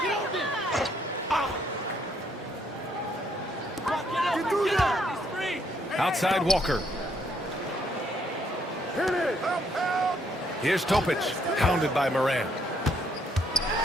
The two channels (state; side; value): normal; both; correlation 0.70